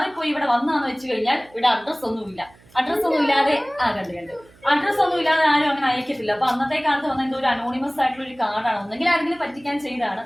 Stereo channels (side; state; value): right; noise; hum, 27 dB below the sound